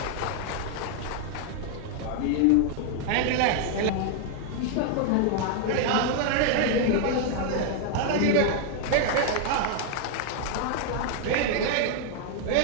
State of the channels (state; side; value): different; both; correlation 0.00